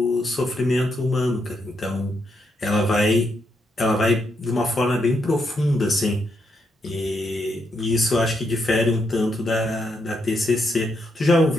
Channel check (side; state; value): both; normal; correlation 0.79